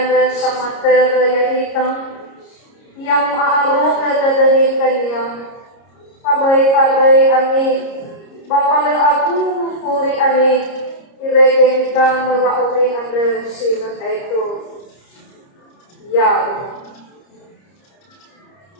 sama terayaitan, yang aarok dadani kanya, pabay-pabay ani, bapala aku puri ani, iregeng ka mawauli anda sila ito, ya.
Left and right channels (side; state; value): right; late; 30 ms